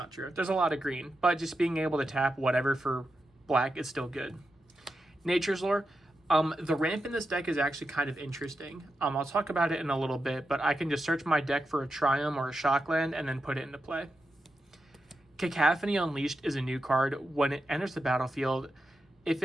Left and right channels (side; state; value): both; normal; correlation 0.88